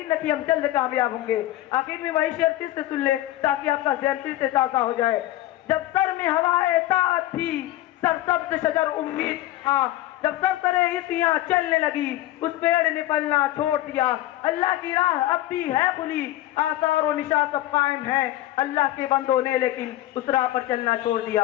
ہے کہ ہم جلد کامیاب ہوں گے. آخر میں وہی شعر پھر سے سن لے تاکہ آپ کا ذہن پھر سے تازہ ہو جائے. جب سر میں ہوائے طاعت تھی، سرسبز شجر امید تھا، جب سرسرے حصیاں چلنے لگی، اس پیڑ نے پھلنا چھوڑ دیا. اللہ کی راہ اب بھی ہے کھلی، آثار و نشاں سب قائم ہیں. اللہ کے بندوں نے لیکن اس راہ پر چلنا چھوڑ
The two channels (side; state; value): right; quieter; 15.2 dB